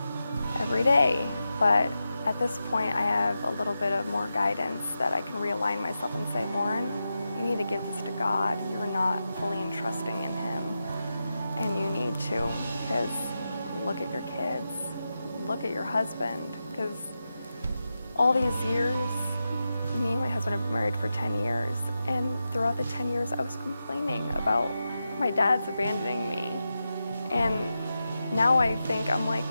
every day. But at this point, I have a little bit of more guidance that I can realign myself and say, Lauren, you need to give this to God. You're not fully entrusting in him, and you need to, because look at your kids, look at your husband, because all these years, me and my husband have been married for 10 years, and throughout the 10 years, I was complaining about my dad's abandoning me. And now I'm like,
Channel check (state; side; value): inverted; both; correlation -0.90